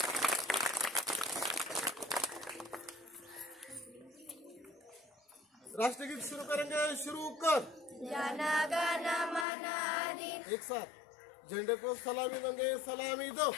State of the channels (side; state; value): right; drops out; at 9.5 s